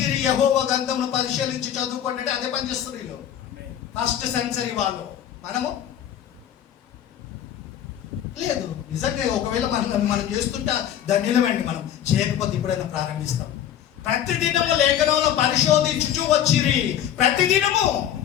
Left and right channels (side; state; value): right; quieter; 10.3 dB